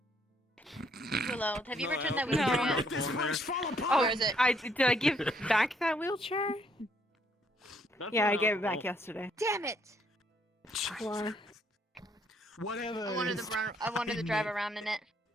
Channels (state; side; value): normal; both; correlation 0.68